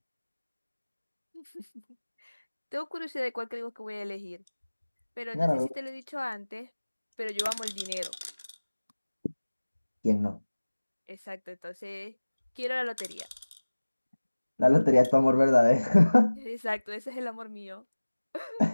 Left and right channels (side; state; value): both; inverted; correlation -1.00